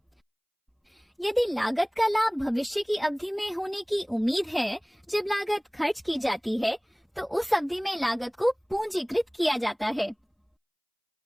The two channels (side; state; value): both; identical; correlation 1.00